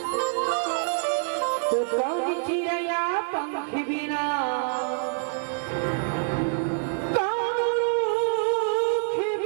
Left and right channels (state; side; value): silent; left; 61 dB below the other